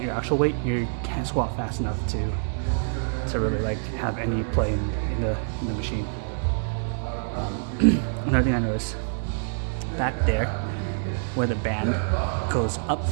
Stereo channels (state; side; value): silent; left; digital silence